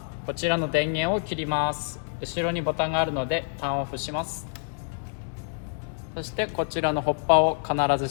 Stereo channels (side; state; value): right; silent; digital silence